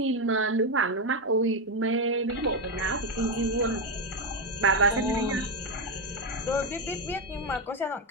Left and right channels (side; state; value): both; normal; correlation 0.08